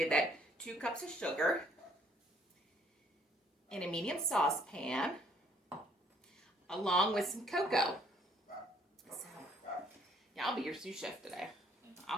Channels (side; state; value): both; normal; correlation 0.63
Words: that. 2 cups of sugar in a medium saucepan, along with some cocoa. So, yeah, I'll be your sous chef today. I'll